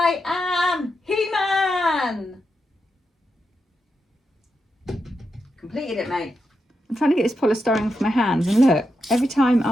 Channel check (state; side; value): normal; both; correlation 0.86